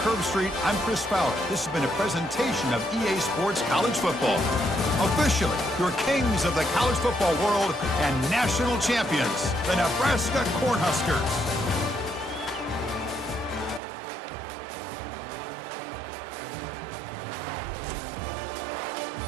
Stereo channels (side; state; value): left; drops out; at 13.8 s